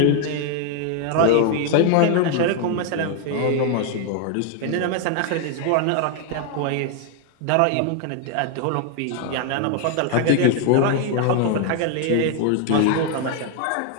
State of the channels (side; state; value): both; different; correlation 0.00